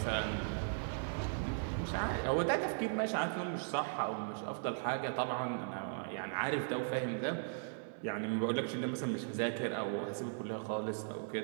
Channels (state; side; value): silent; left; digital silence